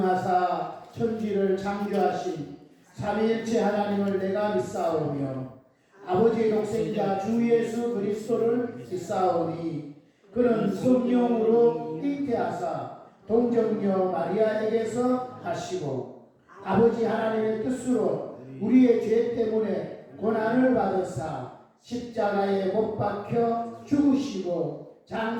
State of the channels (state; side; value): identical; both; correlation 1.00